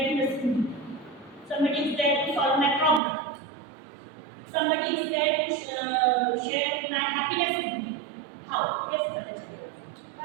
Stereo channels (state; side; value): drops out; left; at 3.0 s